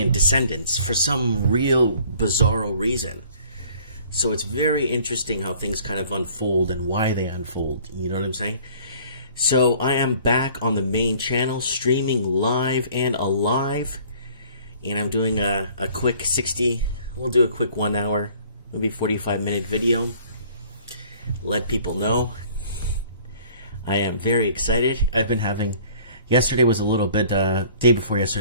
descendants for some real bizarro reason. So it's very interesting how things kind of unfold and why they unfold. You know what I'm saying? So I am back on the main channel, streaming live and alive. And I'm doing a quick 60, we'll do a quick 1 hour, maybe 45-minute video. Let people know. I am very excited. I've been having, yesterday was a little bit, day before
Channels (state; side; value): inverted; both; correlation -0.53